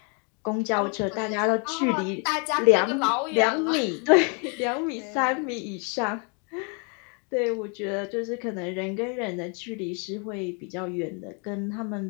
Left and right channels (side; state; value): right; quieter; 36.3 dB